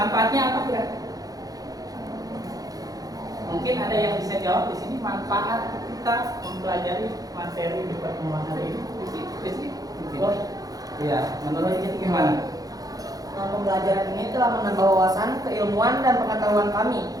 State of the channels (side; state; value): left; late; 0.18 ms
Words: apa kira? Mungkin ada yang bisa jawab di sini manfaat kita mempelajari materi di pertemuan hari ini. Iya, menurut kita gimana? Pembelajaran ini telah menambah wawasan, keilmuan, dan pengetahuan kami